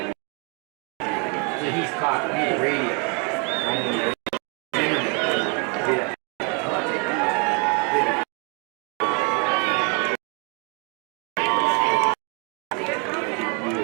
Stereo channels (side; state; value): left; quieter; 35.2 dB